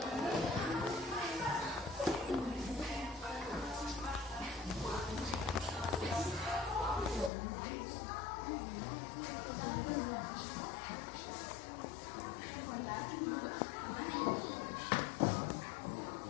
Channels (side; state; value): right; drops out; at 7.3 s